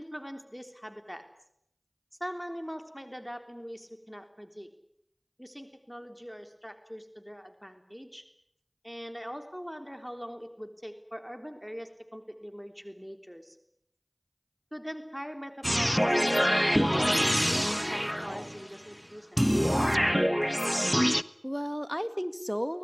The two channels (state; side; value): identical; both; correlation 1.00